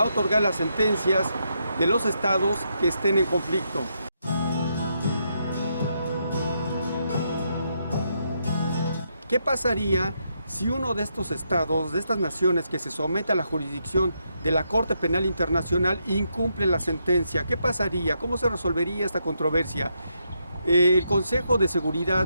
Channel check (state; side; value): inverted; both; correlation -0.80